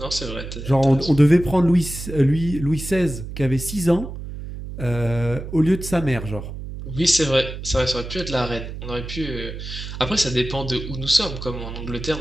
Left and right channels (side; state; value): right; noise; hum, 9 dB below the sound